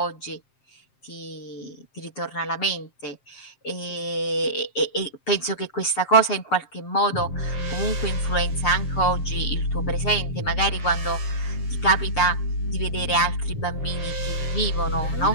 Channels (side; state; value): right; late; 7.5 ms